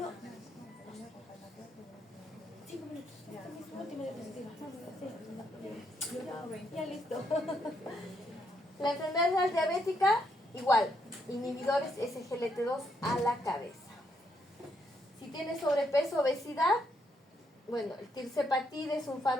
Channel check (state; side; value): normal; both; correlation 0.76